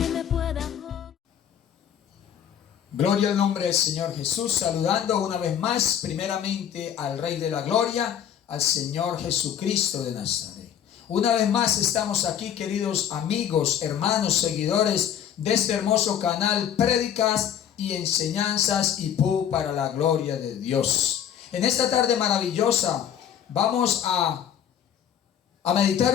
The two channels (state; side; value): quieter; right; 9.3 dB